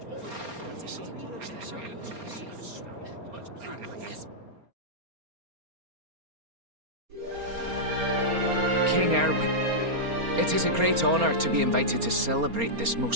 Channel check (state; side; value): late; left; 4.3 ms